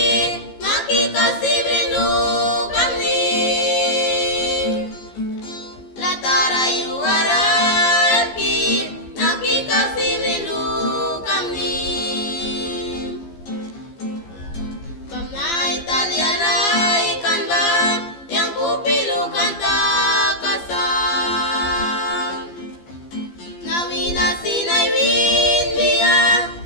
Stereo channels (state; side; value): late; right; 15 ms